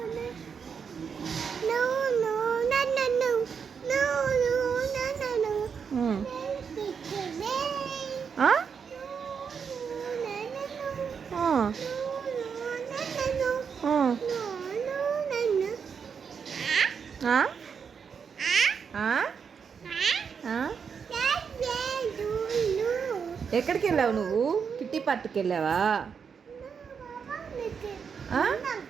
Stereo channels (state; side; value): quieter; left; 6.4 dB